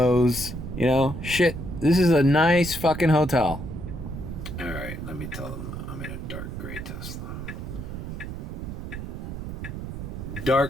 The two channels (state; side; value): noise; right; rumble, 7 dB below the sound